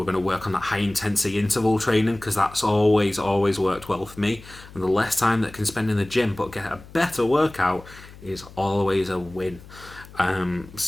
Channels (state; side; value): noise; left; hum, 19 dB below the sound